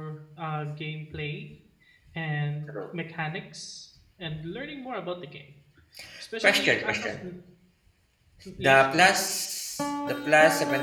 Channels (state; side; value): identical; both; correlation 1.00